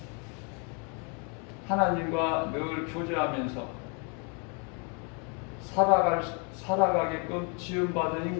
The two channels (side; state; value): right; quieter; 35.8 dB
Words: 하나님과 늘 교제하면서 살아가게끔 지음받은